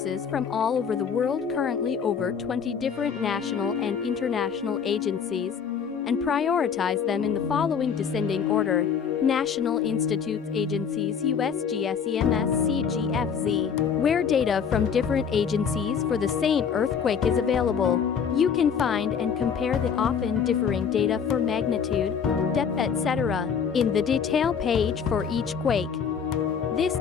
from all over the world, currently over 20 different national and international agencies, and prioritize them in the following descending order: National Institutes Agencies, USGS, EMS, CGFZ, where data from different agencies for the same earthquake is available. You can find and compare the often differing data for magnitude, depth, etc. in the detail page for each quake. This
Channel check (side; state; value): right; quieter; 6.9 dB